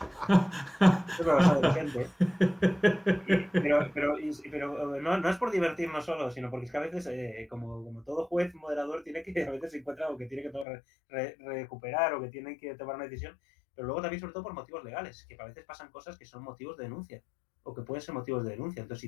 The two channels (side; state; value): right; drops out; at 10.7 s